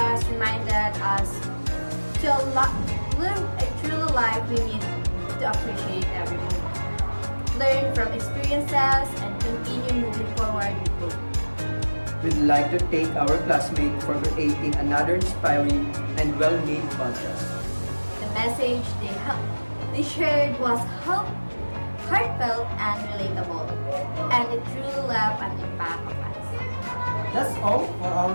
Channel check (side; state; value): both; inverted; correlation -1.00